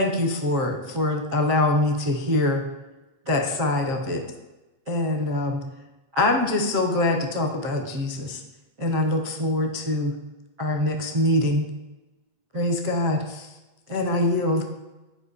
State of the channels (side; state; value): left; late; 8.1 ms